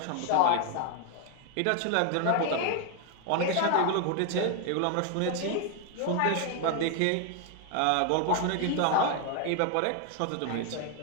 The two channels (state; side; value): different; both; correlation 0.00